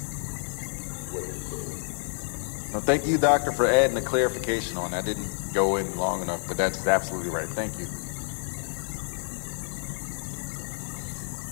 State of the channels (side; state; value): right; silent; 59 dB below the other